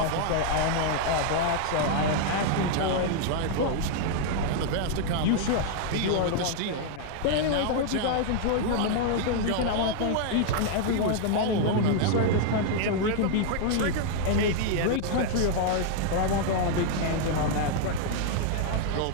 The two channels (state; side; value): different; both; correlation 0.00